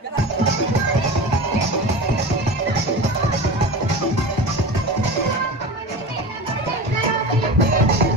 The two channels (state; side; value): normal; both; correlation 0.30